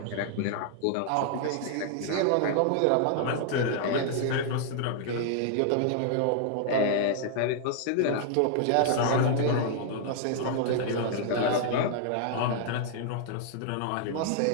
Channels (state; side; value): different; both; correlation -0.01